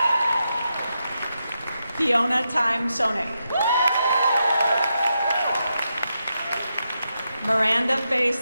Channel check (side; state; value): both; inverted; correlation -0.86